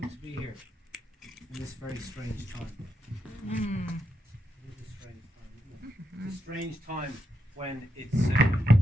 to be here in this very strange time. It is a strange time, isn't it? It's a strange time when it's.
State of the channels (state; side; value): normal; both; correlation 0.83